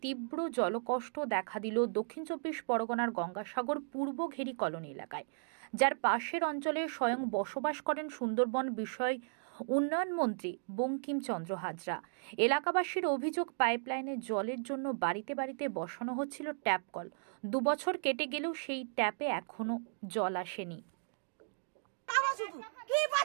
তীব্র জলকষ্ট দেখা দিল দক্ষিণ চব্বিশ পরগনার গঙ্গাসাগর পূর্ব ঘেরি কলোনি এলাকায়, যার পাশের অঞ্চলে স্বয়ং বসবাস করেন সুন্দরবন বিষয় উন্নয়ন মন্ত্রী বঙ্কিমচন্দ্র হাজরা। এলাকাবাসীর অভিযোগ, পাইপলাইনের জলের জন্য বাড়িতে বাড়িতে বসানো হচ্ছিল ট্যাপ কল। 2 বছর কেটে গেলেও সেই ট্যাপে এখনো জল আসেনি। কি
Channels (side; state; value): left; silent; digital silence